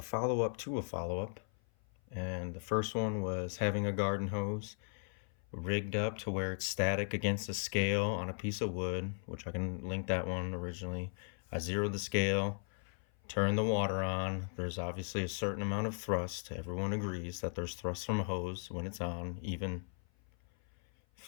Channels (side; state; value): right; silent; 53 dB below the other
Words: follow-up to a follow-up. And the first one was having a garden hose rigged up to where it's static against a scale on a piece of wood, which I can link that one originally. I zeroed the scale, turned the water on. There's obviously a certain amount of thrust. Everyone agrees that there's thrust from a hose when it's on, even